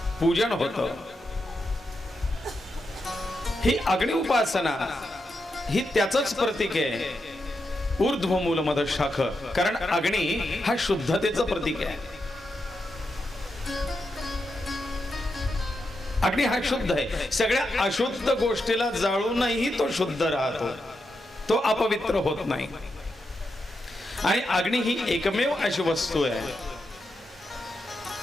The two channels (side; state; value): both; normal; correlation 0.86